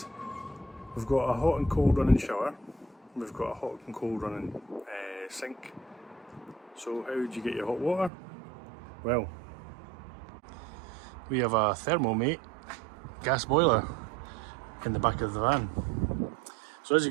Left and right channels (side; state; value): left; drops out; at 8.1 s